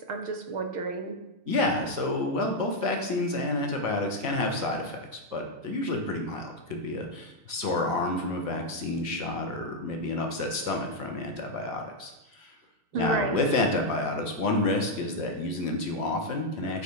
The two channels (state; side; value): late; left; 6.5 ms